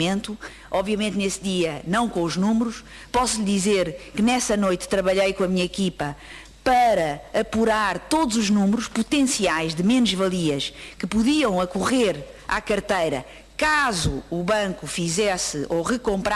Obviamente nesse dia não com os números. Posso lhe dizer que nessa noite trabalhei com a minha equipa para apurar todos os números potenciais de menos-valias que podiam ocorrer à carteira caso o banco fizesse ou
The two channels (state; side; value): identical; both; correlation 1.00